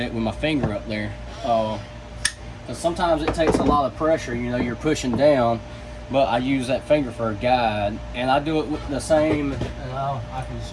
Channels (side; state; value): both; identical; correlation 1.00